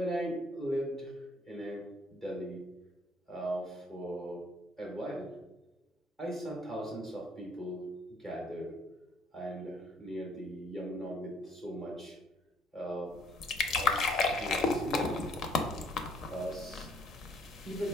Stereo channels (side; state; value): both; normal; correlation 0.63